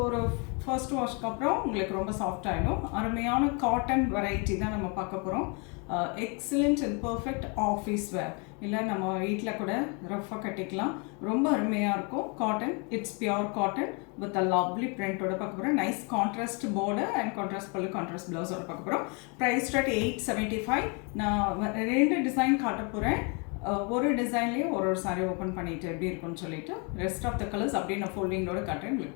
ஒரு ஃபர்ஸ்ட் வாஷ்க்கு அப்புறம் உங்களுக்கு ரொம்ப சாஃப்ட் ஆகிடும். அருமையான காட்டன் வெரைட்டி தான் நம்ம பார்க்க போகிறோம். Excellent and perfect office wear, இல்லை நம்ம வீட்டில் கூட ரஃபாக கட்டிக்கலாம். ரொம்ப அருமையாக இருக்கும். Cotton, it's pure cotton with a lovely பிரிண்டோட பார்க்க போகிறோம். Nice contrast border and contrast pallu, contrast ப்ளவுஸோட பார்க்க போகிறோம். Price start 875. நான் ரெண்டு டிசைன் காட்ட போகிறேன். ஒரு டிசைன்லேயும் ஒரு சாரீ ஓப்பன் பண்ணிட்டு எப்படி இருக்குன்னு சொல்லிட்டு ரெஸ்ட் ஆஃப் த கலர்ஸ் அப்படியே நான் ஃபோல்டிங்கோட காட்டுறேன்.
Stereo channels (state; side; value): quieter; right; 33.8 dB